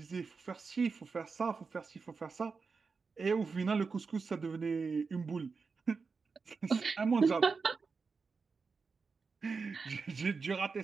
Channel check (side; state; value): left; quieter; 4.8 dB